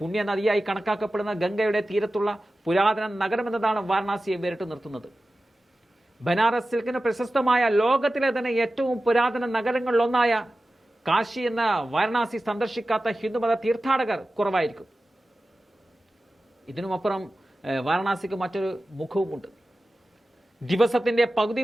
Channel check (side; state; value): both; normal; correlation 0.95